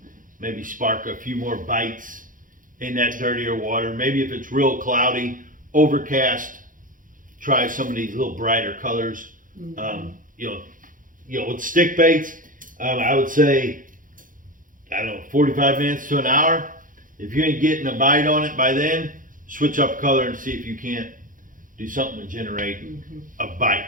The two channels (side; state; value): left; late; 0.39 ms